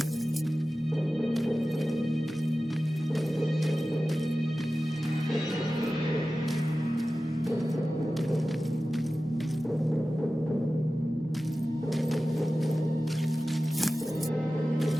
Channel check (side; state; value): both; normal; correlation 0.95